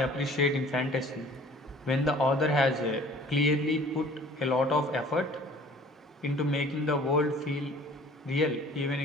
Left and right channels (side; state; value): both; normal; correlation 0.50